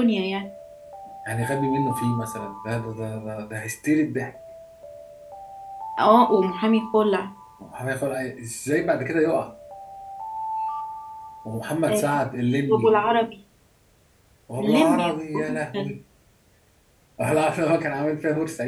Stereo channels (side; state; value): both; identical; correlation 1.00